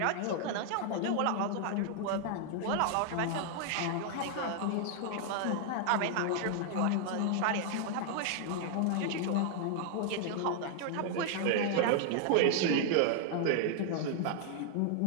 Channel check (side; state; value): both; different; correlation 0.00